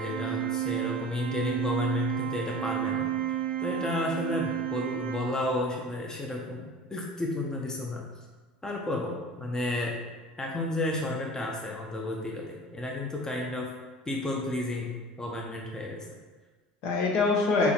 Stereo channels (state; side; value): normal; both; correlation 0.40